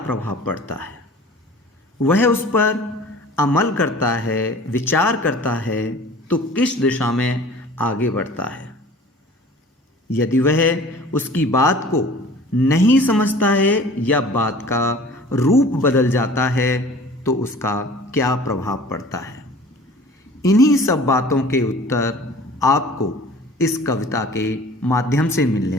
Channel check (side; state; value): both; normal; correlation 0.45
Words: पड़ता है, वह उस पर अमल करता है, विचार करता है तो किस दिशा में आगे बढ़ता है। यदि वह उसकी बात को नहीं समझता है या बात का रूप बदल जाता है तो उसका क्या प्रभाव पड़ता है। इन्हीं सब बातों के उत्तर आपको इस कविता के माध्यम से